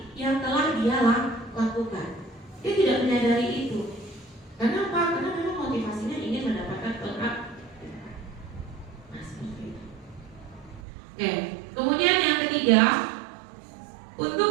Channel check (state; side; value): drops out; left; at 10.8 s